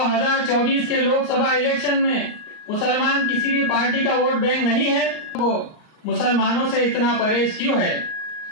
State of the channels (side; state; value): right; late; 38 ms